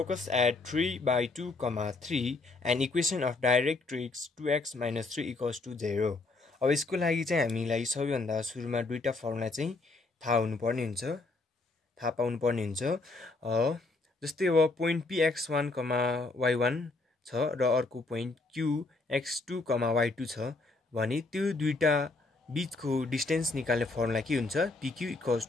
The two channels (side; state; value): right; quieter; 3.4 dB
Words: at 3 by 2, 3 and equation of directrix 2x minus 3 equals to 0. अब यसको लागि चाहिँ हामीलाई सबैभन्दा सुरुमा दुईटा फर्मुला चाहिँ थाहा हुनुपर्ने हुन्छ, थाहा पाउनुपर्ने हुन्छ। जस्तै अब पोइन्ट px1, y1 छ र अर्को पोइन्ट qx2, y2 छ भने त्यो दुईटा बीचको डिस्टेन्स निकाल्ने फर्मुला के हुन्छ? pq equals